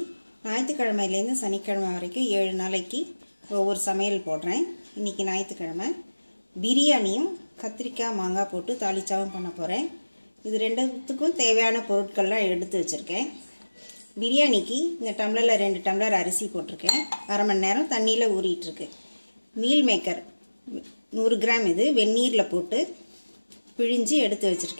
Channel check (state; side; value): inverted; both; correlation -1.00